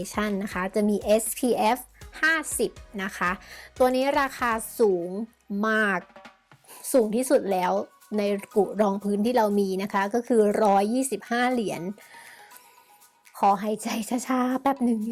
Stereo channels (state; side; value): identical; both; correlation 1.00